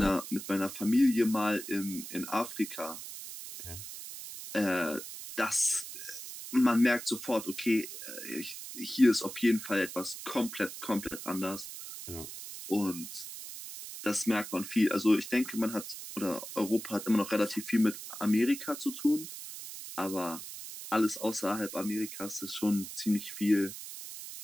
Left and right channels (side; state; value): right; noise; hiss, 10 dB below the sound